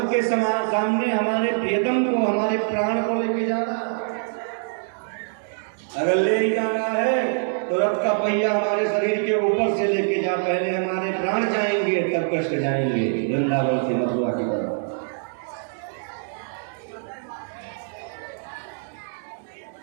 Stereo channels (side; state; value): left; silent; digital silence